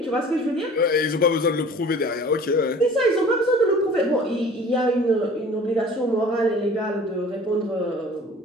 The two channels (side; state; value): both; normal; correlation 0.46